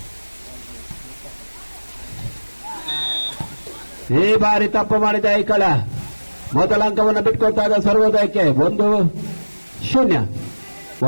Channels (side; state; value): both; inverted; correlation -1.00